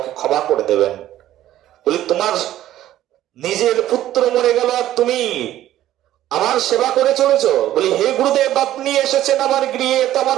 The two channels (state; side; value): quieter; left; 13.3 dB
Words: ক্ষমা করে দেবেন। বলি তোমার নিজের পুত্র মরে গেল আর তুমি আমার সেবা করে চলেছ? বলি হে গুরুদেব, আপনি এসেছেন আমার গৃহে, তো আমার